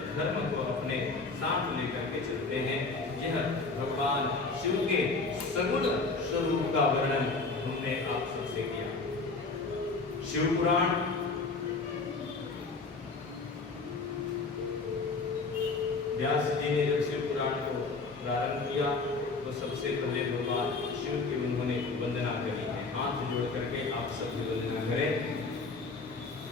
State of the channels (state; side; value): quieter; right; 3.9 dB